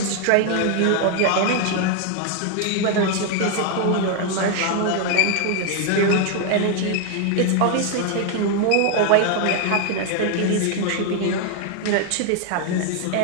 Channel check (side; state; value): both; different; correlation 0.01